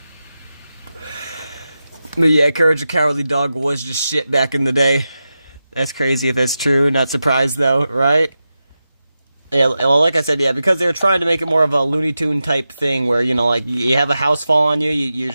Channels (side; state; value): both; inverted; correlation -0.91